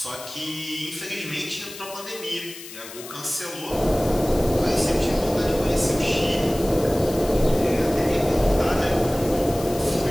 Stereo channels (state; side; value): noise; left; hiss, 14 dB below the sound